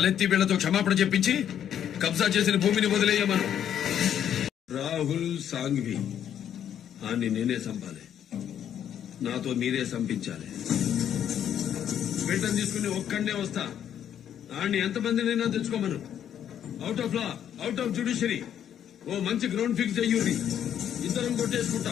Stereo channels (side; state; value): right; quieter; 9.7 dB